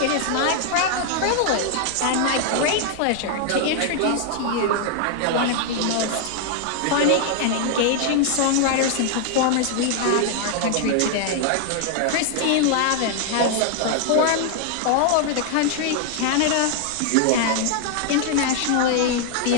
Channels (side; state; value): both; different; correlation 0.00